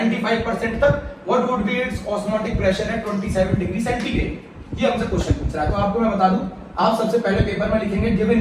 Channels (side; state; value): both; identical; correlation 1.00